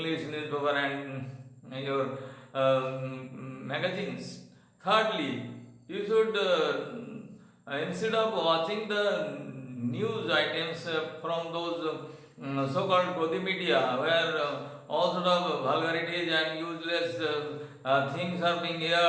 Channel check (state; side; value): identical; both; correlation 1.00